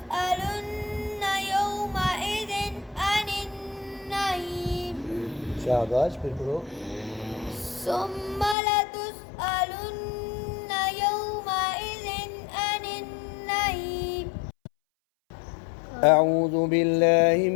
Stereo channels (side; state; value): right; drops out; at 8.6 s